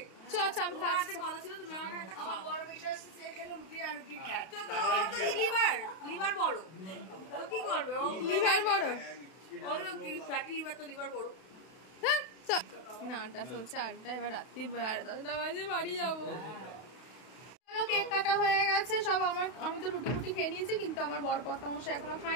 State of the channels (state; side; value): late; right; 32 ms